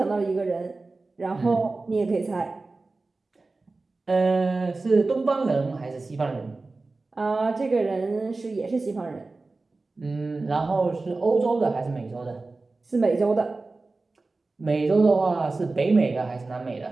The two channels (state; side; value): quieter; left; 3.5 dB